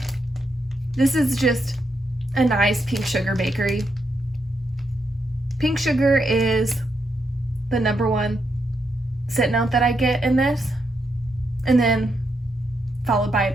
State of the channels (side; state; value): both; normal; correlation 0.81